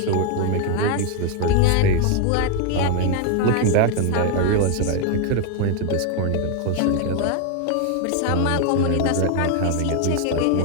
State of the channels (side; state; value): both; different; correlation 0.01